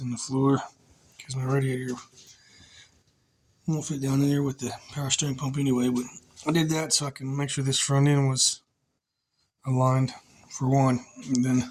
the floor because my radiator won't fit down in there with the power steering pump anyway, but I did that so I can make sure this front end was aligned for one. And then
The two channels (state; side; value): identical; both; correlation 1.00